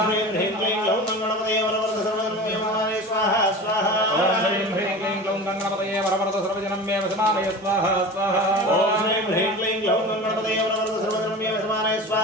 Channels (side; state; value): both; normal; correlation 0.34